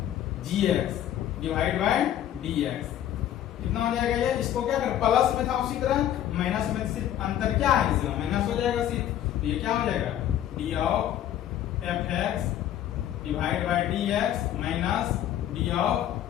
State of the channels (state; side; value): quieter; right; 11.5 dB